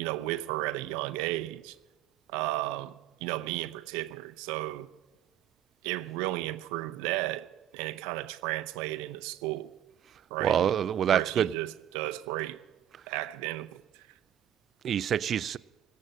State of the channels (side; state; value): left; quieter; 11.5 dB